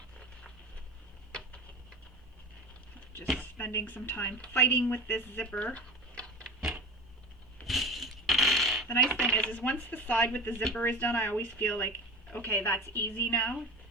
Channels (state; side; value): normal; both; correlation 0.32